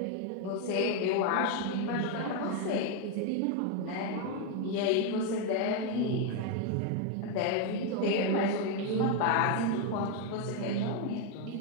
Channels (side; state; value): both; different; correlation 0.02